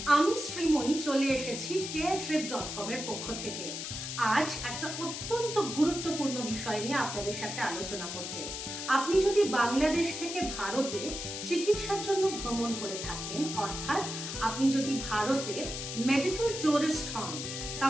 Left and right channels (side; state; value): left; noise; hiss, 6 dB below the sound